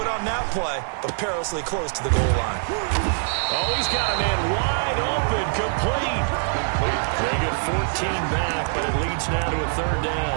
on that play, but perilously close to the goal line. Oh, he's got a man wide open, complete. They get 14 back, but it leads now to a third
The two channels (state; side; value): silent; left; digital silence